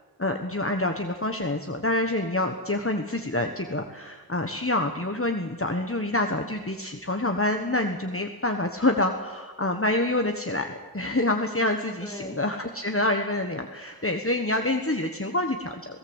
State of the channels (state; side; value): normal; both; correlation 0.05